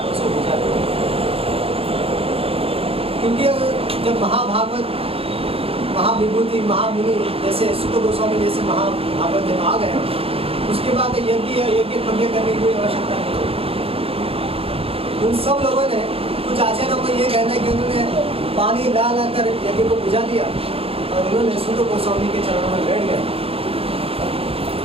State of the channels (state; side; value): late; left; 0.28 ms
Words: उसको भेजा। क्योंकि जब महाभागवत, महाविभूति, महामुनि जैसे सुत गोस्वामी जैसे महाभागवत जब आ गए, उसके बाद यज्ञ करने की कोई आवश्यकता नहीं होगी। उन सब लोगों ने, कुछ आचार्यों को ये कहना है कि उन्होंने पानी ला कर यज्ञ को बुझा दिया और उन्होंने सुत गोस्वामी के चरणों में बैठ गए।